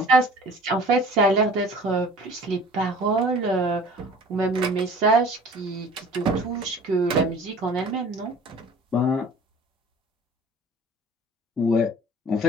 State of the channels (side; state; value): both; normal; correlation 0.46